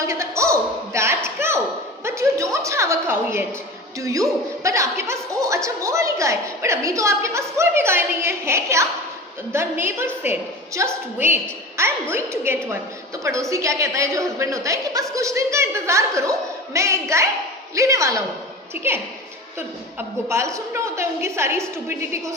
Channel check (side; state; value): both; normal; correlation 0.34